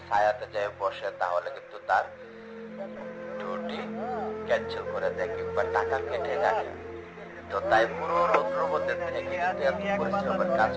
ছায়াতে যায় বসে, তাহলে কিন্তু তার ডিউটি ক্যান্সেল করে দেয় কিংবা টাকা কেটে রাখে। তো তাই পুরো রৌদ্রের মধ্যে থেকে কিন্তু এত পরিশ্রমের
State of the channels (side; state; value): both; identical; correlation 1.00